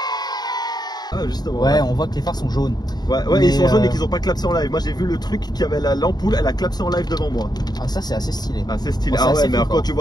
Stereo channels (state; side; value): late; right; 0.20 ms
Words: Ah, justement. Ouais, on voit que les phares sont jaunes. Ouais, mais ils sont jaunes et qu'ils ont pas clapsé en live. Moi j'ai vu le truc qui avait l'ampoule, elle a clapsé en live devant moi. Ah, ça c'est assez stylé. Ah, c'est stylé. Ah ouais, mais alors, quand tu